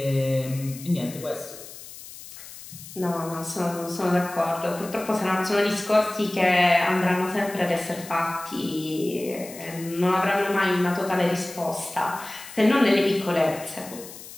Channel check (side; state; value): left; noise; hiss, 15 dB below the sound